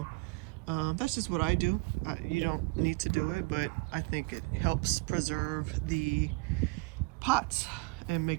That's just what I do. You don't need to do it, but I think it helps preserve the pots and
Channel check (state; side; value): quieter; left; 25.4 dB